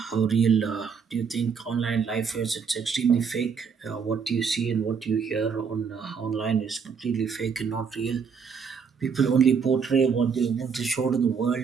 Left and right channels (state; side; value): quieter; left; 6.1 dB